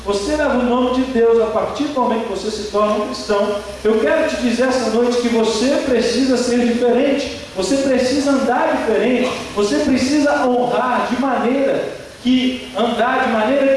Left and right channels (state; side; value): identical; both; correlation 1.00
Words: você leva o nome de Deus a partir do momento que você se torna um cristão. Eu quero te dizer essa noite que você precisa ser diferente, você precisa andar diferente, você precisa honrar de maneira que